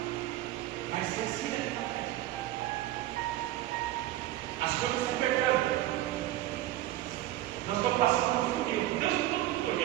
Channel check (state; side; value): quieter; left; 14.8 dB